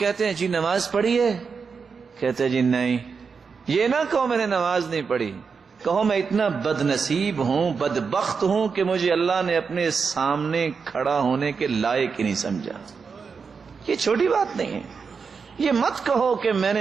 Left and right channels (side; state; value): left; quieter; 5.5 dB